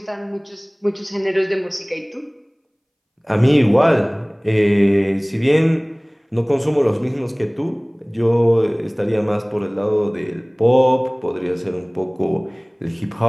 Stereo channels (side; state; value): both; identical; correlation 1.00